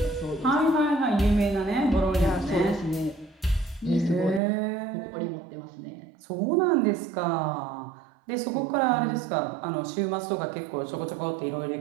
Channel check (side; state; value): left; drops out; at 4.4 s